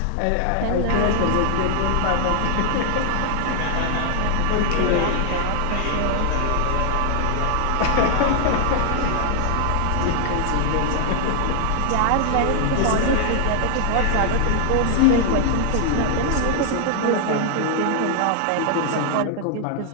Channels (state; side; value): different; both; correlation 0.00